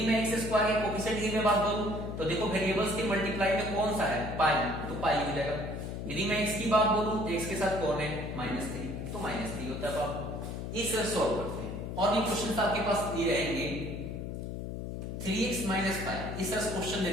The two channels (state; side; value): noise; left; hum, 6 dB below the sound